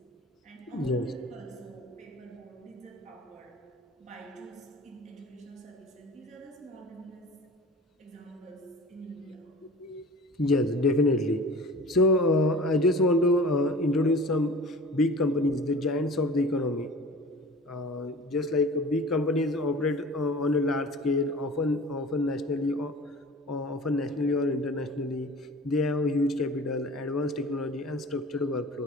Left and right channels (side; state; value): both; normal; correlation 0.41